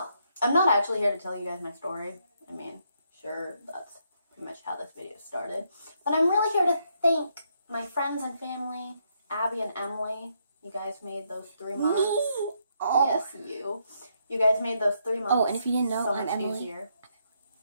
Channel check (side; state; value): both; inverted; correlation -0.76